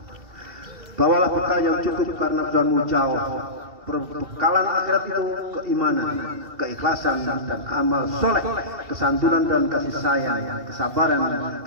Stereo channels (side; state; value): left; late; 2.4 ms